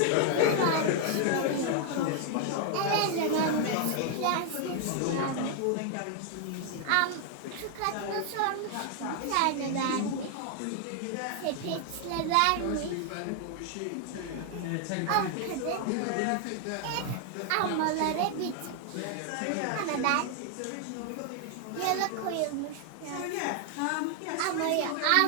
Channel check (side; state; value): both; different; correlation 0.00